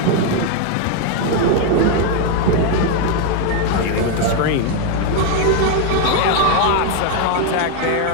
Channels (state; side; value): different; both; correlation 0.01